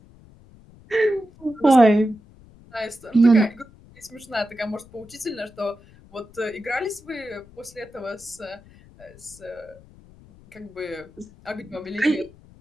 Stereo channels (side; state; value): left; noise; rumble, 24 dB below the sound